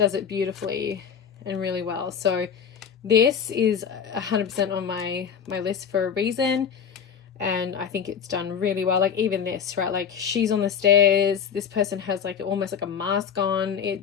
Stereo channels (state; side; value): quieter; right; 7.4 dB